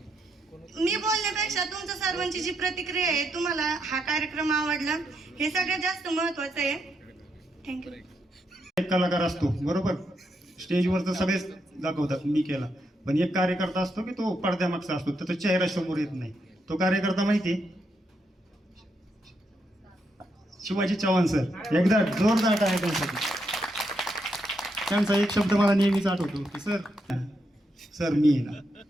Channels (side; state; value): both; normal; correlation 0.80